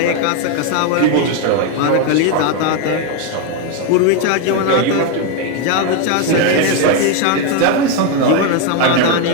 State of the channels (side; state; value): both; different; correlation 0.01